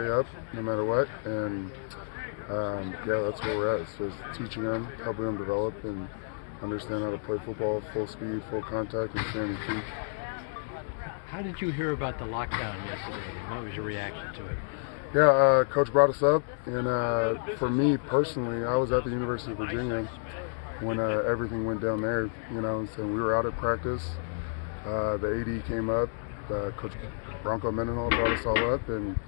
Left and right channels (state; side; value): silent; right; digital silence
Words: up no matter what. And that's where we're at. It's just teaching them, helping them develop and understand how to play football, full speed, full contact, and stay on your feet. How did you hear about the lockdown yesterday, and what was your reaction to it? Yeah, Coach brought us up, and for me personally, I was at the University of Virginia when everything went down there, so we were out at practice. The AD came up, Coach Bronco Mendenhall brought us all up, and